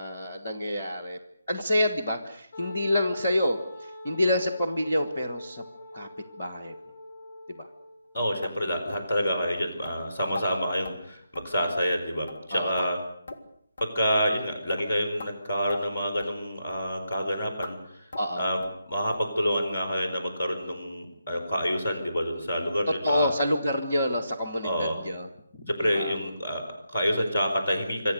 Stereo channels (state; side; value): inverted; both; correlation -0.84